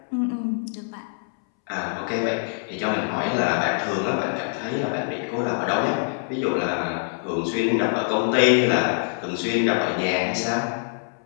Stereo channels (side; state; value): right; silent; 62 dB below the other